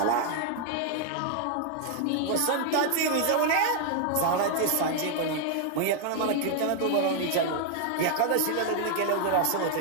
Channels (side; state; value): both; different; correlation 0.00